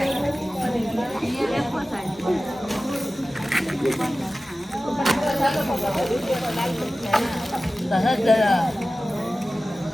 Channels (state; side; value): normal; both; correlation 0.96